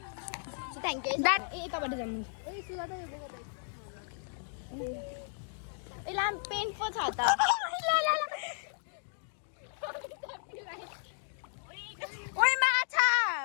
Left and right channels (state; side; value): silent; right; digital silence